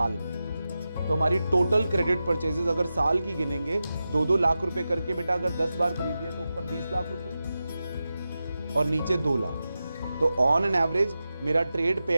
में। तो हमारी टोटल क्रेडिट परचेजेस अगर साल की गिनेंगे 2-2 लाख रुपए करके बेटा, अगर 10 बार खरीदिए तो ऊपर 20 लाख रुपए और नीचे 2 लाख। तो ऑन एन एवरेज मेरा ट्रेड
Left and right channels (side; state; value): both; inverted; correlation -0.92